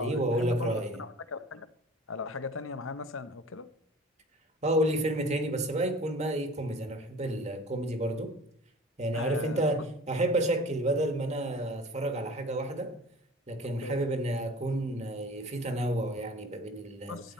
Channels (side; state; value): both; normal; correlation 0.44